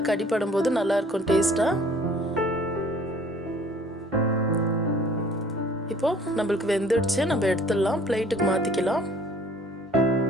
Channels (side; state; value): both; normal; correlation 0.53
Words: கடிப்படும் போது நல்லா இருக்கும் டேஸ்ட்டாக. இப்போ நம்மளுக்கு வெந்துடுச்சு, நம்ம எடுத்துடலாம், பிளேட்டுக்கு மாற்றிக்கலாம்.